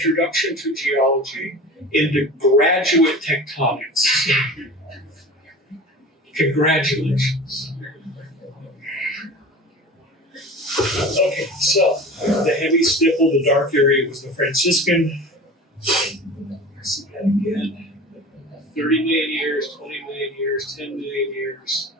to geology into graduate tectonics. Congratulations. Okay, so the heavy stipple, the dark area was the Franciscan. See that again. 30 million years, 20 million years, 10 million years.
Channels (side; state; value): both; normal; correlation 0.37